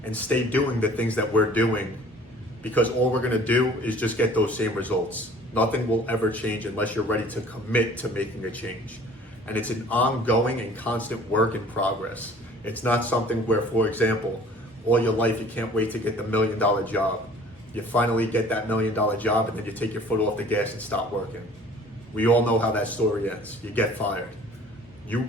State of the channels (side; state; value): both; normal; correlation 0.50